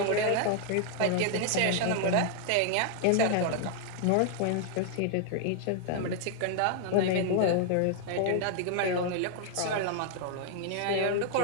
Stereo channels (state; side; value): different; both; correlation 0.00